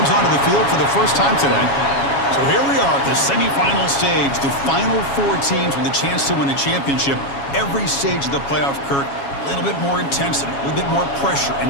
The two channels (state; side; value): late; right; 7.2 ms